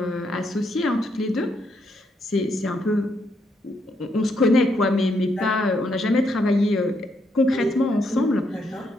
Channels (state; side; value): normal; both; correlation 0.76